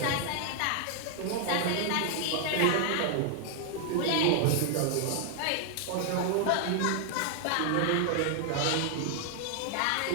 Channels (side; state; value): both; different; correlation 0.00